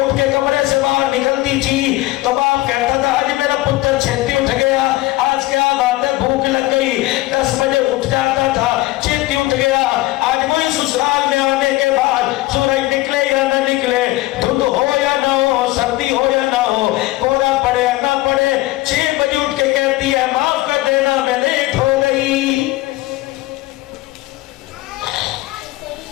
के कमरे से बाहर निकलती थी तो बाप कहता था आज मेरा पुत्र छेती उठ गया, आज क्या बात है भूख लग गई। 10 बजे उठ जाता था, छेती उठ गया। आज वही ससुराल में आने के बाद सूरज निकले या ना निकले, धुंध हो या ना हो, सर्दी हो या ना हो, कोहरा पड़े या ना पड़े, 6 बजे उठ के कहती है माफ कर देना मैं लेट हो गई।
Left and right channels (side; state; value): right; quieter; 18.3 dB